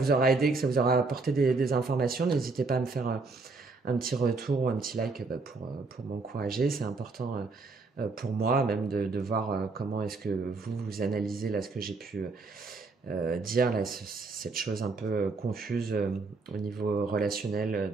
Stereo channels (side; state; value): left; quieter; 3.9 dB